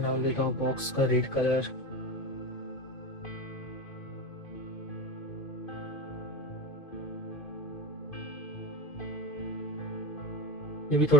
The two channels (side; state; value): right; late; 2.5 ms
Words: डाल देता हूँ बॉक्स का रेड कलर। ये भी